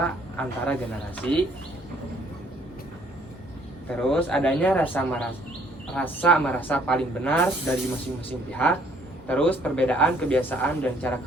antara generasi. Terus adanya rasa merasa paling benar dari masing-masing pihak. Terus perbedaan kebiasaan dan cara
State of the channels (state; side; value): normal; both; correlation 0.62